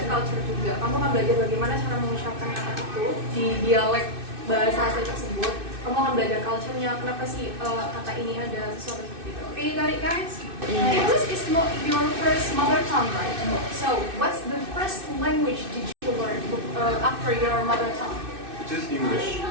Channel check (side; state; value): left; late; 2.6 ms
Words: culture juga. Kamu akan belajar bagaimana cara mengucapkan kata itu di dialek bahasa asli tersebut. Kamu akan belajar culture-nya, kenapa sih kata ini ada sesuatu seperti itu. Okay, you got it guys? English is not your first mother tongue, right? So, what's the first language did you learn after your mother tongue? It is English.